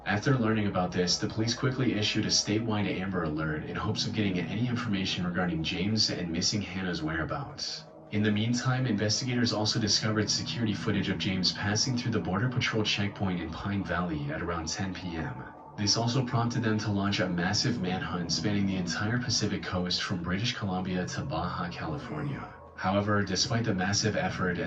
After learning about this, the police quickly issued a statewide Amber Alert in hopes of getting any information regarding James and missing Hannah's whereabouts. In the meantime, investigators also discovered security footage of James passing through the Border Patrol checkpoint in Pine Valley at around 10 p.m. This also prompted them to launch a massive manhunt spanning the entire Pacific coast from British Columbia to Baja, California. However, despite the massive effort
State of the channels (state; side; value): identical; both; correlation 1.00